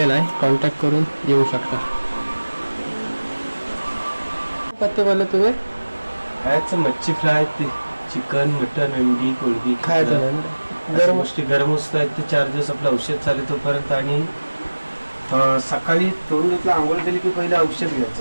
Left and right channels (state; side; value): inverted; both; correlation -1.00